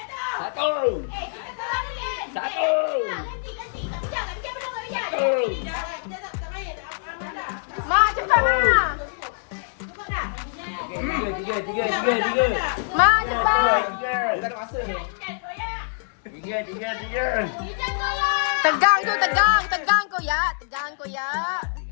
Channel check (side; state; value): right; silent; digital silence